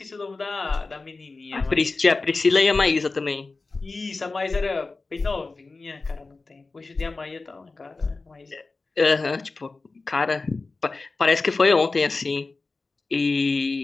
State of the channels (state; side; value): quieter; right; 3.7 dB